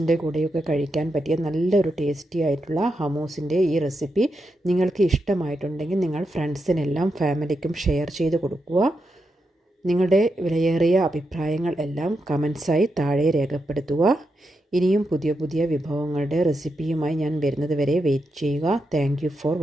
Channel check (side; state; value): both; normal; correlation 0.85